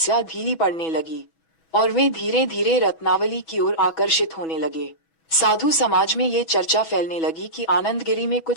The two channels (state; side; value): late; right; 6.1 ms